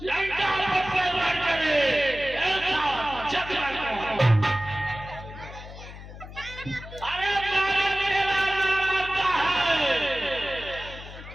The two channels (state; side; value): noise; left; hum, 14 dB below the sound